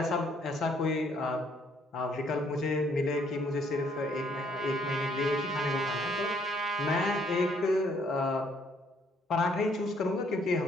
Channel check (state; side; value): normal; both; correlation 0.66